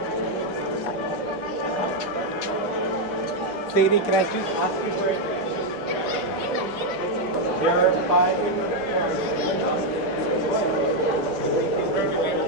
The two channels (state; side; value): normal; both; correlation 0.02